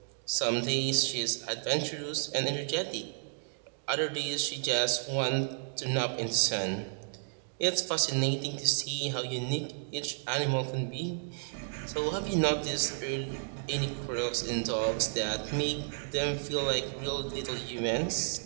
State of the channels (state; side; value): silent; left; digital silence